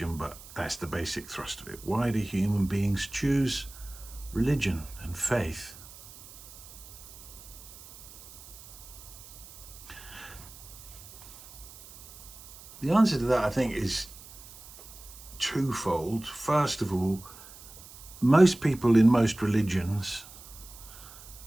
but that's the basic thrust of it. Why do human beings choose religion and faith? The answer to that, I think, is twofold. First of all, most people in most religions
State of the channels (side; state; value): right; noise; hiss, 18 dB below the sound